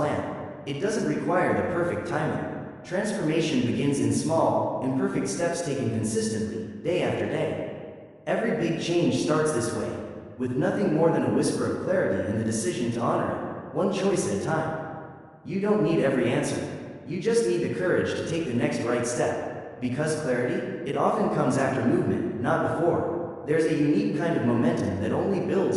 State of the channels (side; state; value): both; identical; correlation 1.00